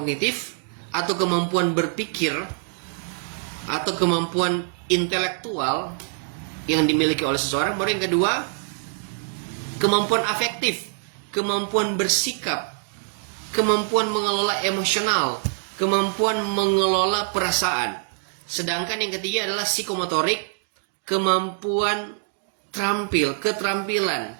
atau kemampuan berpikir, atau kemampuan intelektual yang dimiliki oleh seseorang. Baru yang kedua, kemampuan afektif, kemampuan bersikap, kemampuan mengelola emosional, kemampuan mengelola perasaan. Sedangkan yang ketiga adalah psikomotorik, kemampuan keterampilan,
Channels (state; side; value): silent; left; 62 dB below the other